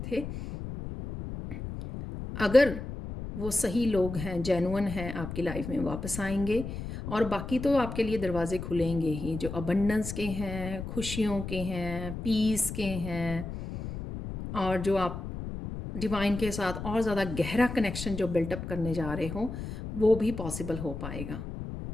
थे, अगर वो सही लोग हैं, जेन्युइन हैं, आपकी लाइफ में वापस आएंगे। और बाकी तो आपके लिए दरवाजे खुलेंगे ही, जो अबंडेंस के हैं, खुशियों के हैं, पीस के हैं, और जो आप डिवाइन के साथ और ज़्यादा गहरा कनेक्शन जो बिल्टअप करने जा रहे हो, वो भी पॉसिबल हो पाएगा।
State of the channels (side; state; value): left; noise; rumble, 7 dB below the sound